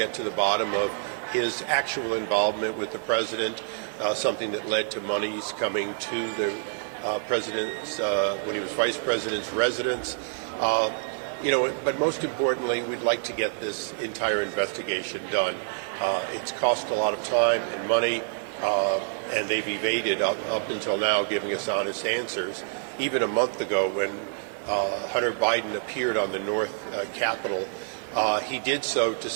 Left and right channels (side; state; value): left; silent; digital silence